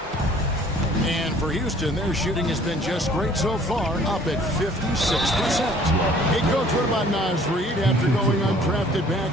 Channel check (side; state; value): both; normal; correlation 0.55